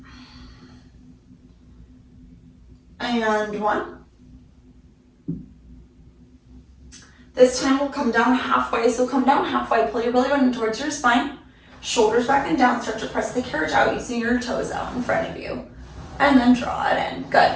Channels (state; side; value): identical; both; correlation 1.00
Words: And 1. This time we'll come down halfway. So come down halfway, pull your belly button towards your spine, shoulders back and down, start to press the carriage out using your toes out in front of you. And then draw it in, good.